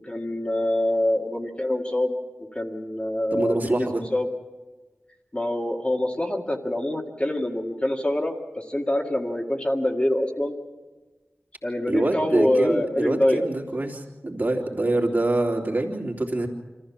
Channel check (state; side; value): normal; both; correlation 0.96